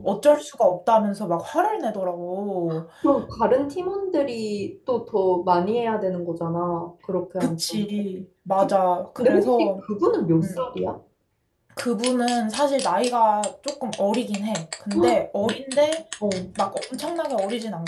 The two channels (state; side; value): identical; both; correlation 1.00